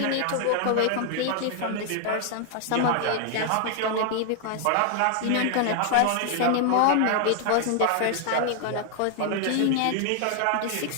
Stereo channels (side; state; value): both; different; correlation 0.00